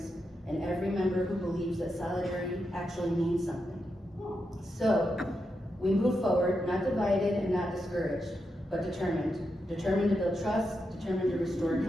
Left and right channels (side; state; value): both; normal; correlation 0.86